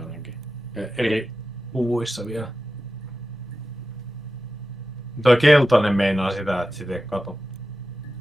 ainakin. Eri puvuissa vielä. Toi keltainen meinaa sitä, että sitä ei kato.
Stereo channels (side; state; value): both; normal; correlation 0.93